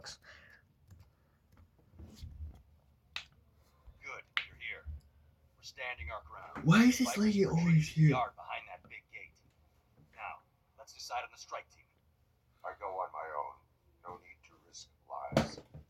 Good, you're here. We're standing our ground. Why is this Bikers lady retreated always to the here? yard behind that Let's decide on the strike team. I go on my own. No need to risk lives.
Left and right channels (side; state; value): both; identical; correlation 1.00